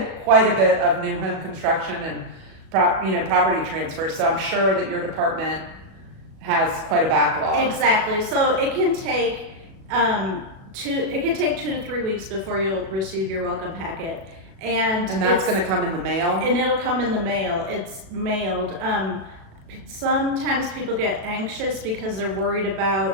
quite a bit of new home construction and property transfers. So I'm sure that your department has quite a backlog. Exactly. So it can take 2 to 3 weeks before you'll receive your welcome packet. And that's going to come in the mail? And it'll come in the mail. It's mailed. Sometimes people get anxious because they're worried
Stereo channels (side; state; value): left; late; 36 ms